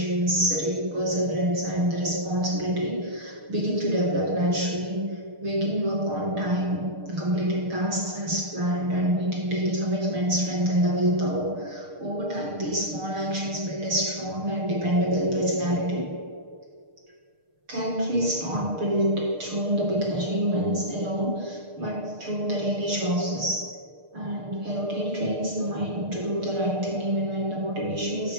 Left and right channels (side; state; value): left; late; 6.6 ms